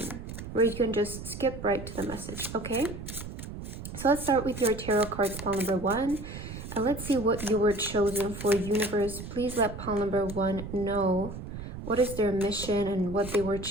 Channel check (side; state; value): right; noise; rumble, 10 dB below the sound